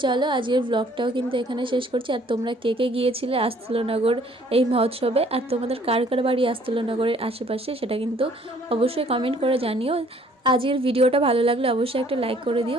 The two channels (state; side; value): normal; both; correlation 0.59